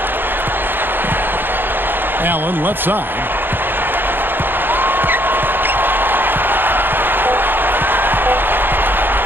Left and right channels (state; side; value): late; left; 0.097 ms